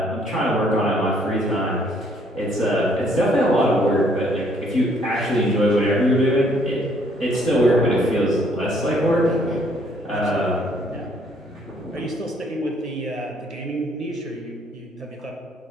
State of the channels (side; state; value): both; normal; correlation 0.65